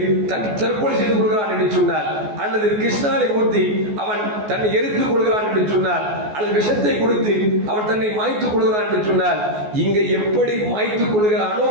தற்கொலை செய்து கொள்கிறான் என்று சொன்னார், அல்லது கிருஷ்ணாவை ஊற்றி அவன் தன்னை எரித்துக் கொள்கிறான் என்று சொன்னார், அல்லது விஷத்தை கொடுத்து அவன் தன்னை மாய்த்துக் கொள்கிறான் என்று சொன்னால், இங்கே எப்படி மாய்த்துக் கொள்கிறானோ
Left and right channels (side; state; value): left; late; 14 ms